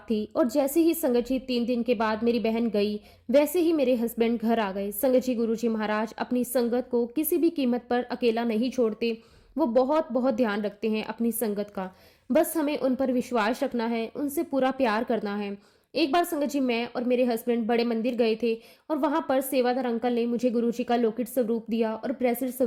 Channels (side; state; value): both; identical; correlation 1.00